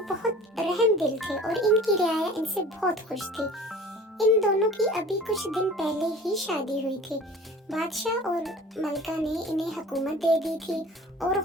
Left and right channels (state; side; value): normal; both; correlation 0.43